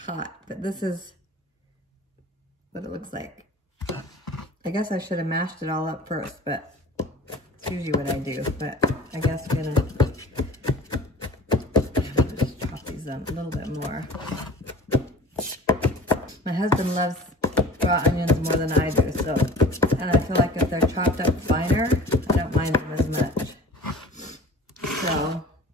hot. But this is what it looks like. I guess I should have mashed it all up first, but it's usually what I do. But I guess I'm gonna just chop these up a little bit more. My husband loves raw onions more than I do, so, and I feel like if they're chopped up finer, I don't mind them as much. So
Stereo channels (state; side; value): normal; both; correlation 0.42